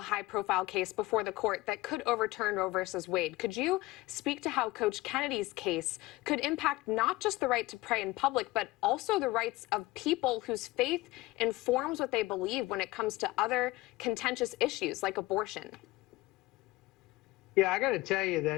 high-profile case before the court that could overturn Roe versus Wade. Could you speak to how Coach Kennedy's case could impact not just the right to pray in public, but also the rights of people whose faith informs what they believe when it comes to other contentious issues like abortion? Yeah, I got to tell you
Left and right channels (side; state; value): right; quieter; 19.1 dB